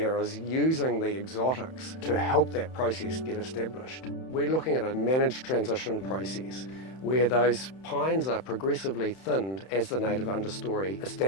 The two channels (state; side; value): late; right; 31 ms